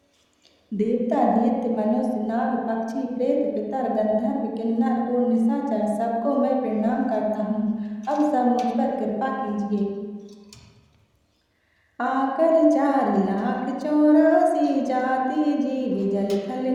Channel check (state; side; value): identical; both; correlation 1.00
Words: देवता दैत्य मनुष्य नाग पक्षी प्रेत पितर गंधर्व किन्नर और निशाचर सबको मैं प्रणाम करता हूँ अब सब मुझ पर कृपा कीजिए आकर 4,84,000 जाति जीव जल थल